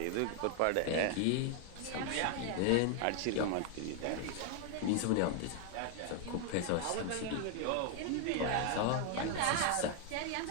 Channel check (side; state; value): both; different; correlation 0.00